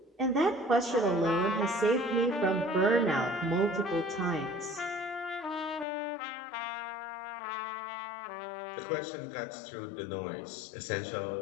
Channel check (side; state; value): right; drops out; at 5.9 s